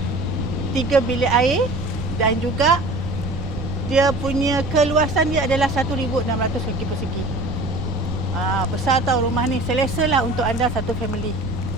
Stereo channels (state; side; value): noise; right; rumble, 8 dB below the sound